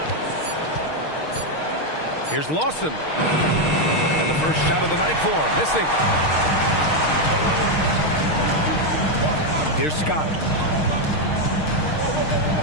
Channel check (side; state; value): right; late; 6.5 ms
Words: Here's Lawson. And the first shot of the night for him. Missing. Here's Scott.